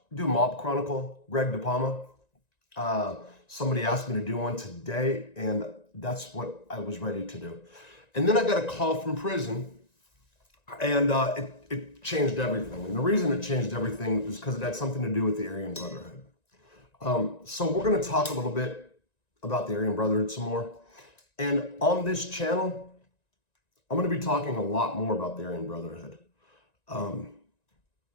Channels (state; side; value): late; right; 1.9 ms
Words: do a mob chronicle, Greg DePalma. Somebody asked me to do one today, and that's what I was ready to do. And then I got a call from prison, and it changed everything. And the reason it changed everything is because it had something to do with the Aryan Brotherhood. So we're going to talk a little bit about the Aryan Brotherhood some more. And on this channel, I'm going to be talking a lot more about the Aryan Brotherhood.